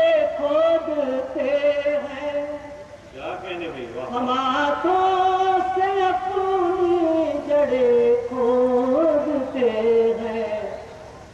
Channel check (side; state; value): both; identical; correlation 1.00